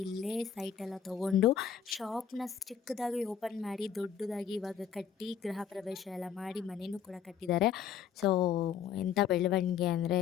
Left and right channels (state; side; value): quieter; right; 8.0 dB